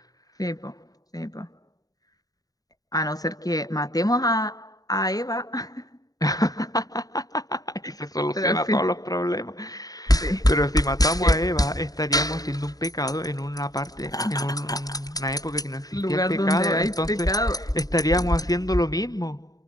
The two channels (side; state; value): right; late; 0.18 ms